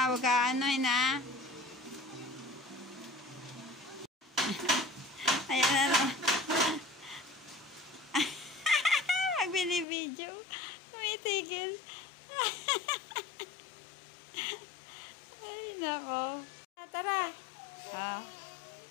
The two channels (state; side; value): drops out; right; at 9.9 s